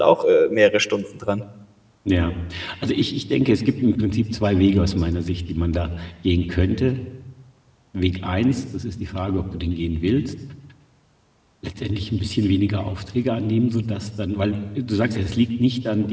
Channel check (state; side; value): identical; both; correlation 1.00